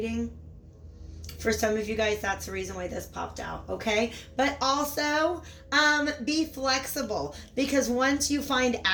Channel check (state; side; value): identical; both; correlation 1.00